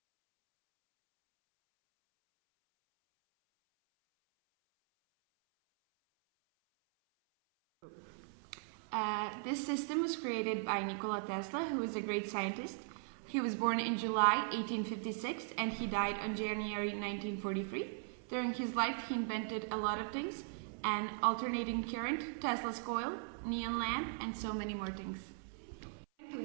This system was created by Nikola Tesla, who was a great scientist. He was born in July 1856 and he died on January 1943. During his life, he invented a lot of things: an alternating current, Tesla's coil, neon lamp, and so many more things. To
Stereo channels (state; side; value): silent; left; 52 dB below the other